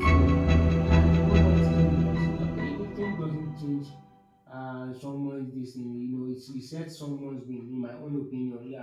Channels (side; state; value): both; identical; correlation 1.00